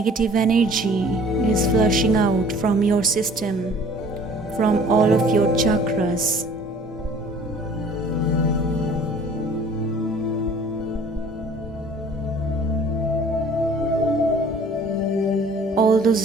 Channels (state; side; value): normal; both; correlation 0.51